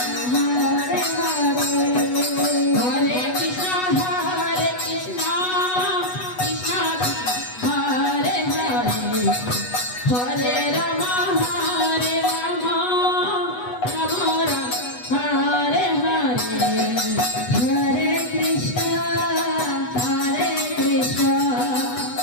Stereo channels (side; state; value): right; late; 8.1 ms